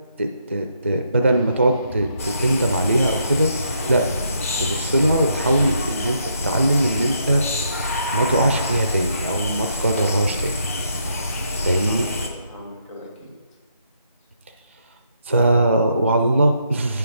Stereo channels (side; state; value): both; inverted; correlation -0.74